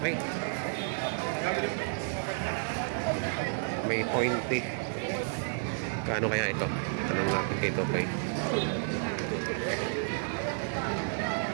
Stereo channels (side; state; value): left; silent; 57 dB below the other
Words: May pointe. Kaano kaya ito? Tanong natin dito kay